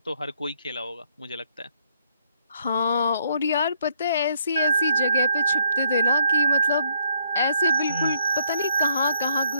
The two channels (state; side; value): inverted; both; correlation -0.71